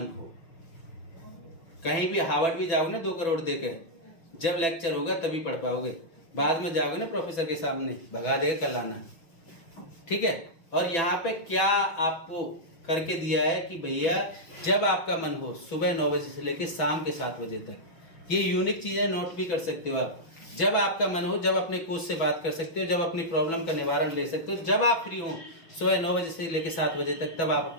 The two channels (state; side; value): late; right; 6.1 ms